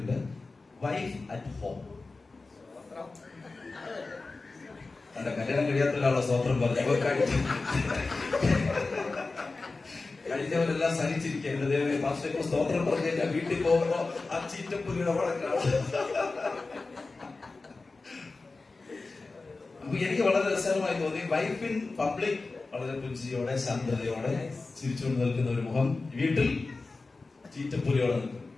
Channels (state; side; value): quieter; right; 3.7 dB